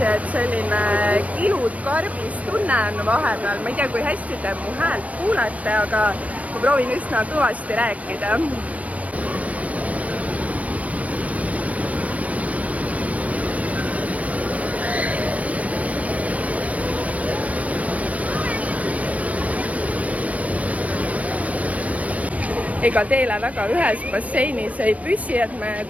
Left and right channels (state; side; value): late; left; 0.067 ms